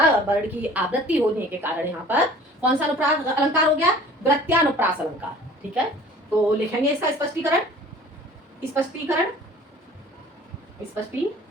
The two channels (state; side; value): normal; both; correlation 0.48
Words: वर्ण की आवृत्ति होने के कारण यहाँ पर कौन सा अनुप्रास अलंकार हो गया, वृत्त्यानुप्रास अलंकार। ठीक है, तो लिखेंगे इसका स्पष्टीकरण,